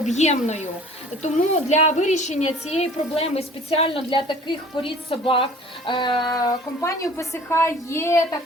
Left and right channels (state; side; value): normal; both; correlation 0.49